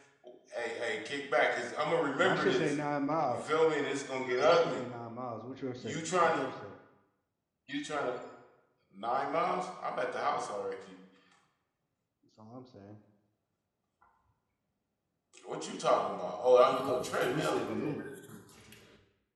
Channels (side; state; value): both; identical; correlation 1.00